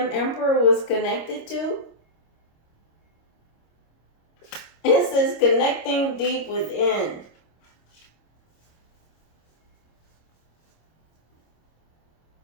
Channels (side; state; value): right; late; 26 ms